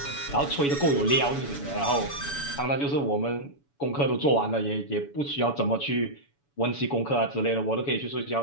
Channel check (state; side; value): late; right; 7.0 ms